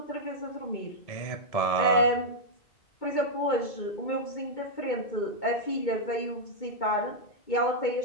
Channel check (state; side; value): late; right; 2.2 ms